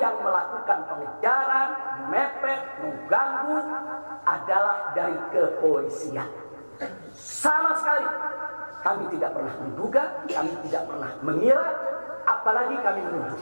melakukan pengejaran, mepet, mengganggu adalah dari kepolisian. Sama sekali kami tidak pernah menduga, kami tidak pernah mengira, apalagi kami menuduh.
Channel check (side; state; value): both; inverted; correlation -1.00